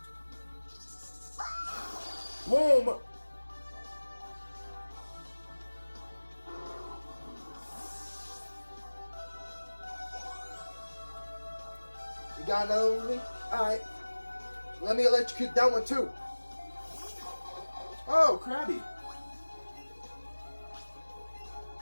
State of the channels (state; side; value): inverted; both; correlation -1.00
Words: Boom. You got another one with me? Alright. Let me electrocute that one too. Oh, Krabby.